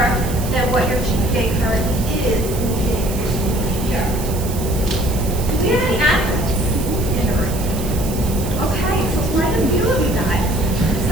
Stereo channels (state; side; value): noise; right; hiss, 11 dB below the sound